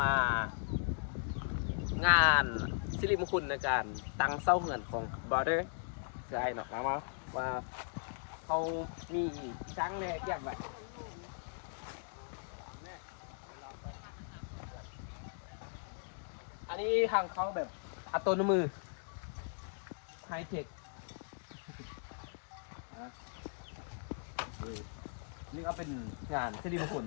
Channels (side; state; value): right; silent; digital silence